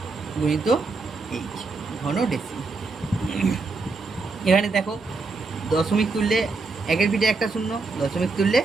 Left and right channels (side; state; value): left; quieter; 3.9 dB